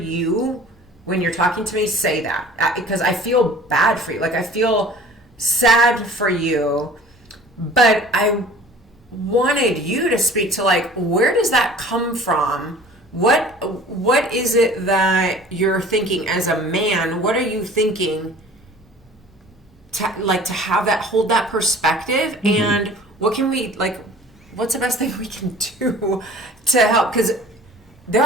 when you're talking to me say that, because I feel bad for you. I feel sad for you, but I wanted you to speak to where does that come from? What is it that you're thinking as a man? What are you thinking to have that, hold that perspective? And what can we, what's the best thing we can do to help? Because there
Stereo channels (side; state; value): both; normal; correlation 0.46